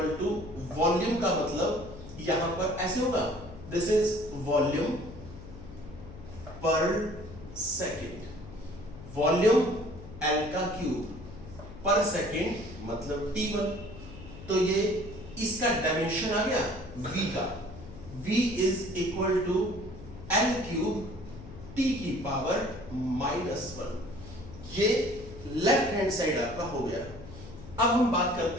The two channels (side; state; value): left; noise; hum, 15 dB below the sound